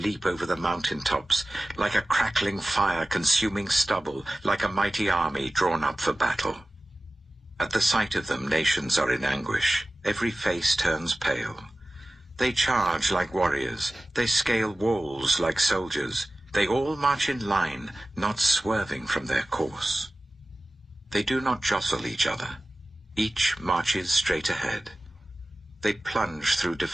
over the mountain tops, like a crackling fire consuming stubble, like a mighty army drawn up for battle. At the sight of them, nations are in anguish. Every face turns pale. They charge like warriors. They scale walls like soldiers. They all march in line, not swerving from their course. They do not jostle each other. Each marches straight ahead. They plunge through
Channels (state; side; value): normal; both; correlation 0.96